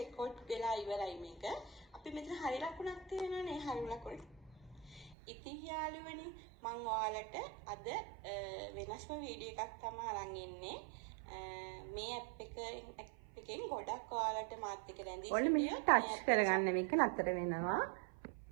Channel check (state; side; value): drops out; left; at 5.2 s